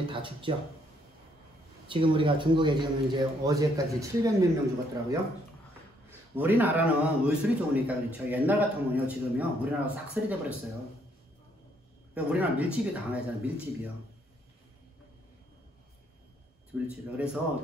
다 죽죠. 지금 우리가 중국에 지금 이제 어제까지 700몇 명 죽었더라고요. 우리나라는 의술이 좋으니까 그렇죠. 옛날 같으면요, 지금요, 우리나라 싹쓸이 돼버렸어요. 우리나라 밀집이 강하잖아요. 밀집이요. 그래서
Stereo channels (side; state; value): both; normal; correlation 0.69